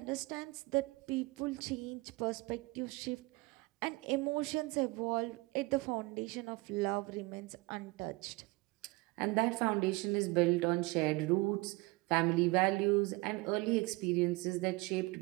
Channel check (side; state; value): left; quieter; 24.5 dB